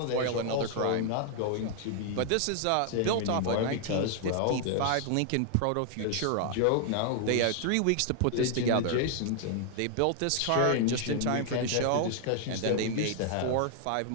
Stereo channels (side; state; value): both; different; correlation 0.00